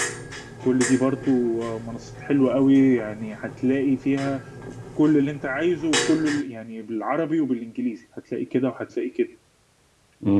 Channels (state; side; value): identical; both; correlation 1.00